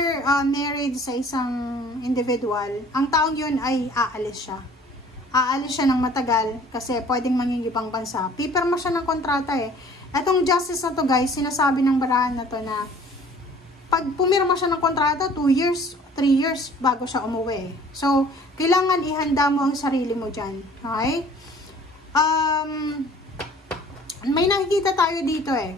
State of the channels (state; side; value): normal; both; correlation 0.52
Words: married sa isang individual, ang taong yun ay aalis siya. Aalis siya ng matagal kasi pwedeng manging ibang bansa. Pipirma siya ng kontrata eh. Etong justice na to guys, sinasabi ng barahan na to na pag pumirma siya ng kontrata, 2 years, 3 years bago siya umuwi. So, kailangan ihanda mo ang sarili mo dyan. Okay? May nakikita tayo dito eh.